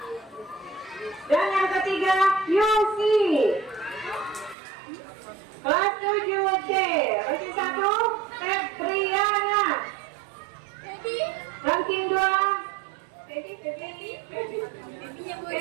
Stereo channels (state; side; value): drops out; left; at 4.5 s